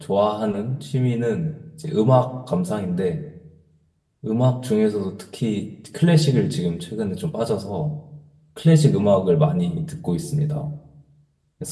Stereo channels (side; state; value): both; identical; correlation 1.00